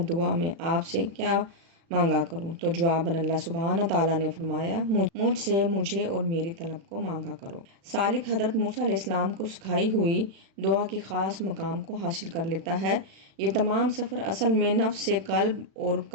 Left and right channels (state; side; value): late; left; 36 ms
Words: دعا میں آپ سے کیا مانگا کروں؟ تو جواباً اللہ سبحانہ تعالیٰ نے فرمایا، مجھ سے مجھے اور میری طلب کو مانگا کرو۔ سالک حضرت موسیٰ علیہ السلام کو سکھائی ہوئی دعا کے خاص مقام کو حاصل کر لیتا ہے۔ یہ تمام سفر اصل میں نفس سے قلب اور